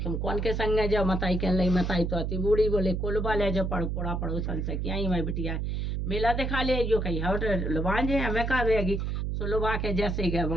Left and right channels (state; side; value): noise; right; hum, 1 dB below the sound